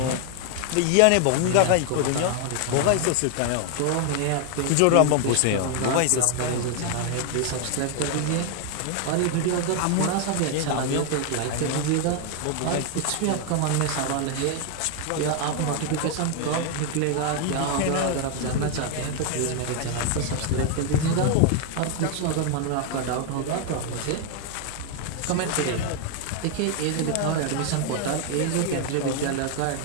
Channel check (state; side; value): different; both; correlation 0.01